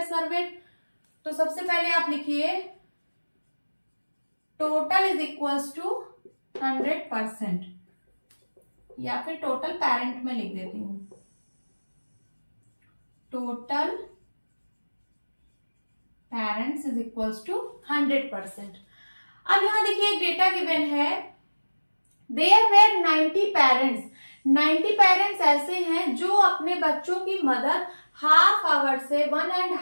served, तो सबसे पहले आप लिखिए टोटल इज इक्वल्स टू 100%, या फिर टोटल पेरेंट में लिख देती हूं, total parents is equals to 100%। अब यहां देखिए एक डेटा गिवन है, देयर वेर 90 पेरेंट्स। 90 पेरेंट्स ऐसे हैं जो अपने बच्चों की मदद हाफ आवर से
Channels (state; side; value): inverted; both; correlation -1.00